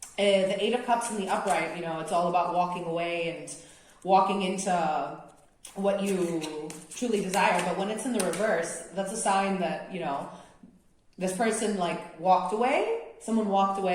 The Eight of Cups in the upright, you know, it's all about walking away and walking into what you truly desire. But when it's in the reverse, that's a sign that, you know, this person like walked away, someone walked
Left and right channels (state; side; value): identical; both; correlation 1.00